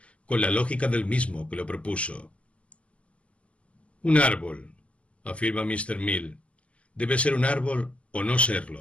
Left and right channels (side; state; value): right; late; 0.062 ms